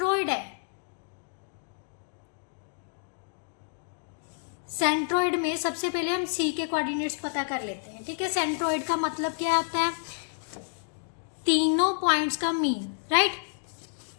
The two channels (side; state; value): right; silent; digital silence